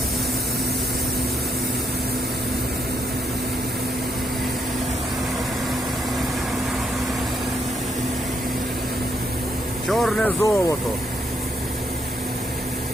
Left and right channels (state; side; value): normal; both; correlation 0.76